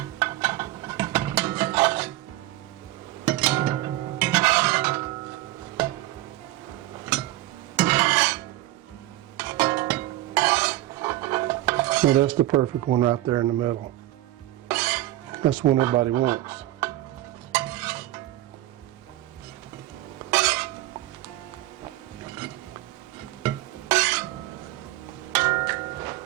Now that's the perfect one right there in the middle. That's the one everybody wants.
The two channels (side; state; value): left; quieter; 16.1 dB